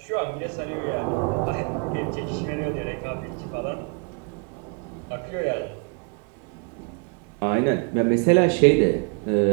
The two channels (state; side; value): quieter; left; 35.8 dB